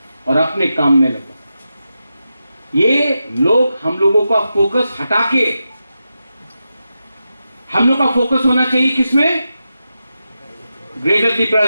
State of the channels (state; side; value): inverted; both; correlation -0.89